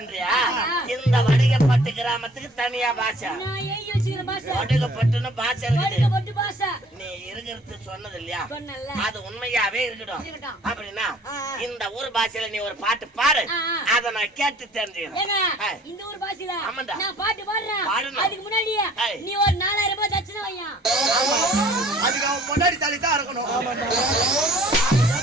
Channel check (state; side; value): normal; both; correlation 0.54